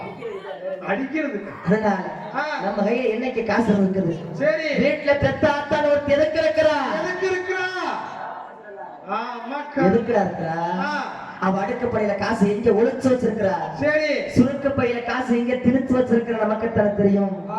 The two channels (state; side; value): identical; both; correlation 1.00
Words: அடிக்கிறதுக்கு? அதனால ஆ, நம்ம கையில என்னைக்கு காசு இருக்குது? சரி. வீட்டுல பெத்த ஆத்தால ஒரு எதுக்கு இருக்கிறா? எதுக்கு இருக்கிறா? ஆமாக்கா. எதுக்குடா இருக்கிறா? ஆ, அவ அடுக்குப்படையில காசு எங்க ஒளிச்சு வச்சிருக்கிறா? சரி. சுருக்கு பையில காசு எங்க திணிச்சு வச்சிருக்கிற நமக்கு தானே தெரியும்.